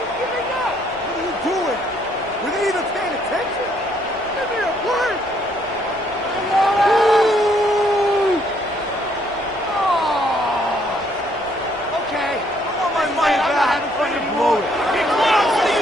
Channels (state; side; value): normal; both; correlation 0.68